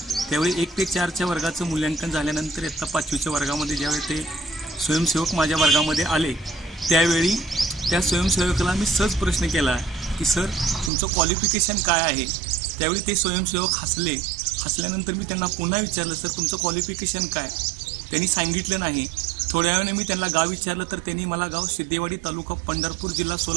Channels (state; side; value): drops out; left; at 10.9 s